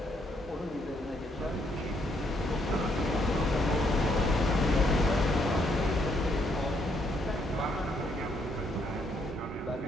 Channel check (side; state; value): both; normal; correlation 0.72